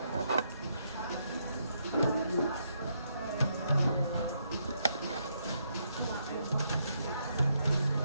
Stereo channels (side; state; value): both; inverted; correlation -0.77